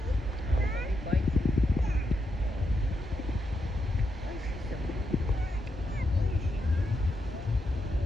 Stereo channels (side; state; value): both; normal; correlation 0.83